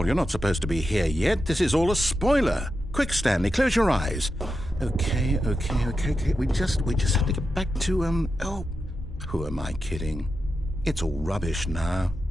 You're not supposed to be here yet. This is all a spoiler. Quick, Stanley, close your eyes. Okay. We just have to get back to, oh, who am I kidding? It's all rubbish now.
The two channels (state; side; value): normal; both; correlation 0.89